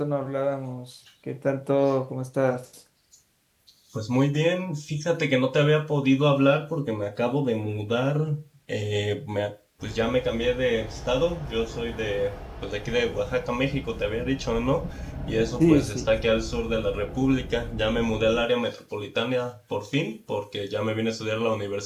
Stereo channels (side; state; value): both; identical; correlation 1.00